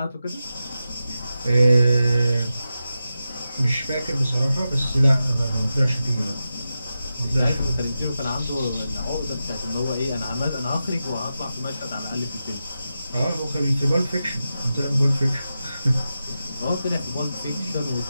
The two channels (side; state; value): both; inverted; correlation -0.91